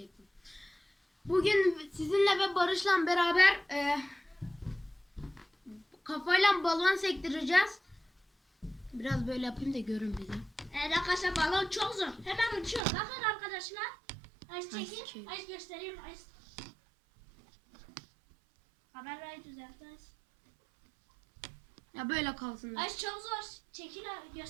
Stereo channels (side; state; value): left; drops out; at 12.8 s